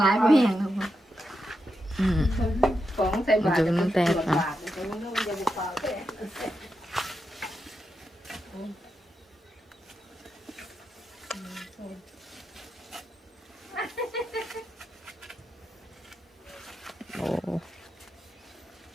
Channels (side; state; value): both; normal; correlation 0.86